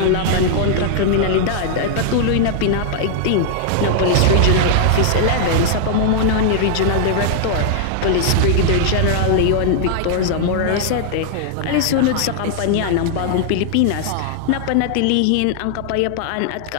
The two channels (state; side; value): different; both; correlation -0.01